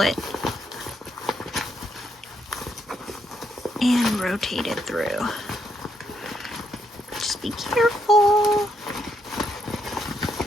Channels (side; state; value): both; normal; correlation 0.76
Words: it, and rotate it through. Just be careful.